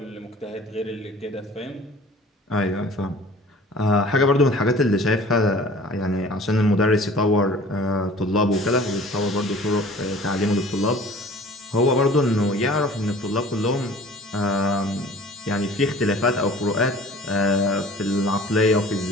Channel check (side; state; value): both; normal; correlation 0.47